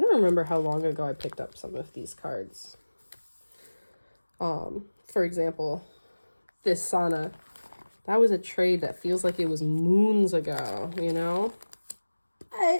remember how long ago I picked up some of these cards. For example, this Sana. That was a trade that feels like it was moons ago, you know?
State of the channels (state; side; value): inverted; both; correlation -1.00